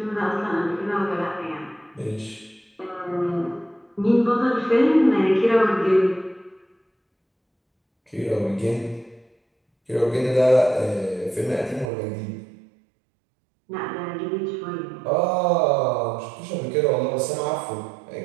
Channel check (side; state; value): left; drops out; at 11.9 s